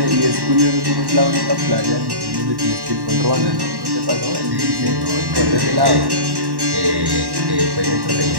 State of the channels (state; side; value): late; left; 1.1 ms